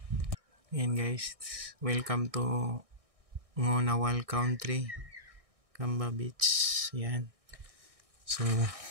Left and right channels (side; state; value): left; late; 1.6 ms